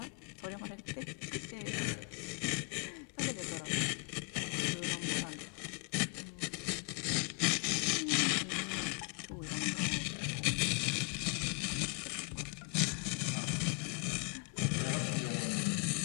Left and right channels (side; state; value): right; quieter; 32.3 dB